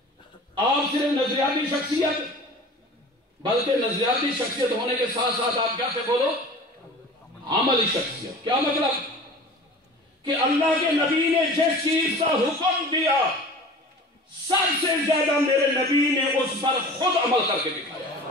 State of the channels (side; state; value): both; normal; correlation 0.40